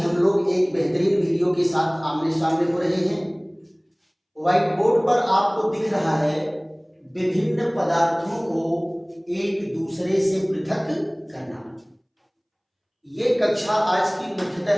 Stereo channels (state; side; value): identical; both; correlation 1.00